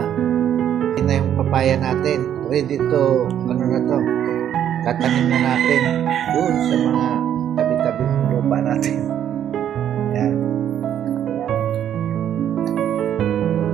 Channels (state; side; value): quieter; left; 10.1 dB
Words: Ito na yung papaya natin. Ready to, ano na to, tatanim na natin doon sa mga tabi-tabi ng lupa natin. Yan.